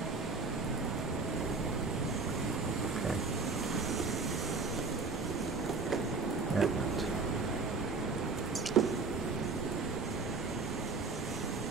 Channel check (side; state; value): left; quieter; 4.1 dB